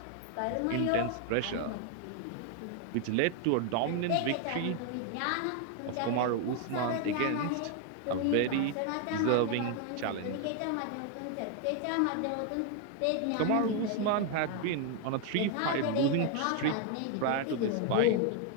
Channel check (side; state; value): both; different; correlation 0.01